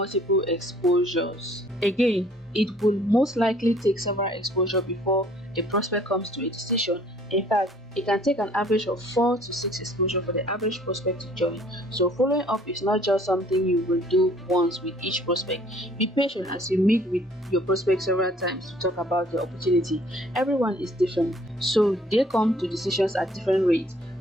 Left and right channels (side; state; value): both; normal; correlation 0.57